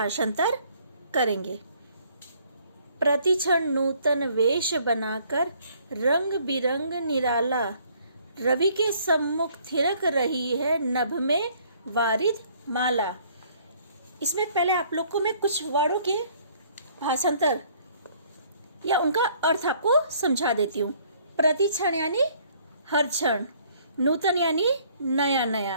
करेंगे। प्रतिक्षण नूतन वेश बनाकर रंग बिरंग निराला रवि के सम्मुख थिरक रही है नभ में वारिद माला। इसमें पहले आप लोग को मैं कुछ वर्डों के भाषांतर या उनका अर्थ आपको समझा देती हूँ। प्रतिक्षण यानी हर क्षण, नूतन यानी नया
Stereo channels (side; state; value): both; inverted; correlation -0.61